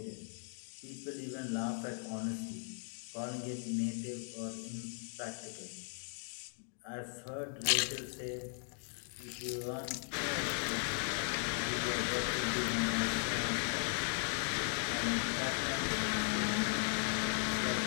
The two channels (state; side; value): silent; right; 53 dB below the other